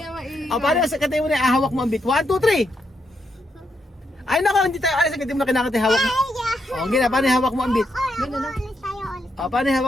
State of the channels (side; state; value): both; normal; correlation 0.80